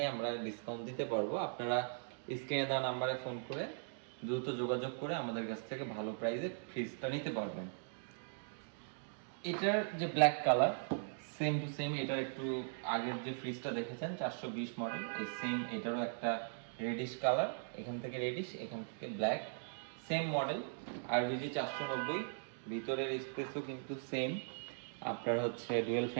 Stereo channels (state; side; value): silent; left; digital silence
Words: আমরা ডিসকাউন্ট দিতে পারবো। আপনারা স্ক্রিনে দেওয়া নাম্বারে ফোন করে দ্রুত যোগাযোগ করে আমাদের কাছ থেকে ভালো প্রাইসে ফ্রিজটা নিতে পারবেন। এটার যে black colour, same to same এটার একটু আগের যে ফ্রিজটা দেখেছেন 420 মডেল, এই সেম এটারও একটা রেডিশ কালার, এখান থেকে রেডিশ এখান থেকে ব্ল্যাক, সেম মডেল আরবিজি 490। ভিতরের স্পেসও কিন্তু সেম, আপনার হচ্ছে ডুয়েল